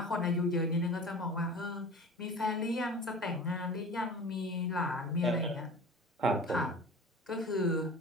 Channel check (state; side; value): normal; both; correlation 0.39